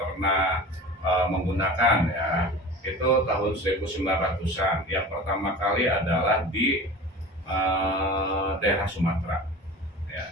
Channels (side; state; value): both; normal; correlation 0.36